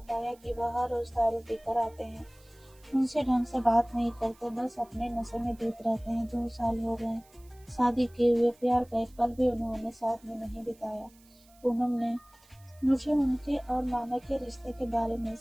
कि वह हर रोज दारू पीकर आते हैं, उनसे ढंग से बात नहीं करते, बस अपने नशे में डूब रहते हैं। 2 साल हो गए शादी किए हुए, प्यार का एक पल भी उन्होंने साथ में नहीं बिताया। पूनम ने मुझे उनके और मामा के रिश्ते के बारे में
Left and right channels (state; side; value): noise; right; hiss, 29 dB below the sound